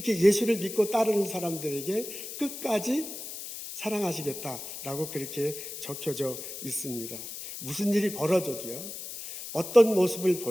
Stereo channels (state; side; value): noise; left; hiss, 9 dB below the sound